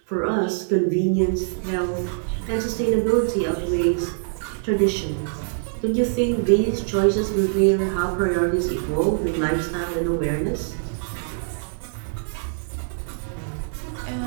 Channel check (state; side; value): silent; left; digital silence